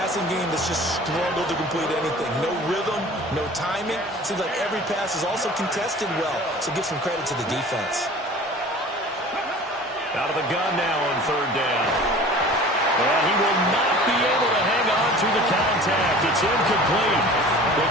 game that's just struggled to complete anything. No rhythm, no timing. Seems like every pass is also contested well, so give some credit to the defense. Out of the gun now on third down. And he will not be able to hang on through the contact. It's incomplete. The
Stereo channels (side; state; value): both; normal; correlation 0.43